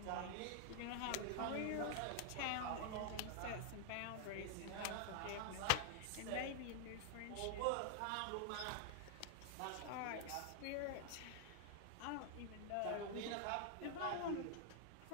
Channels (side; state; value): both; different; correlation -0.01